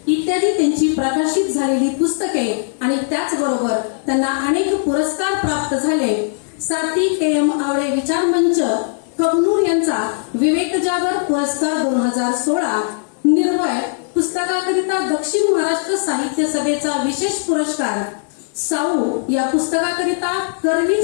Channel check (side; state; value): right; silent; digital silence